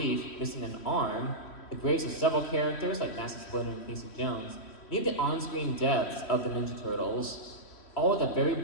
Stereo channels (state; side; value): late; right; 3.1 ms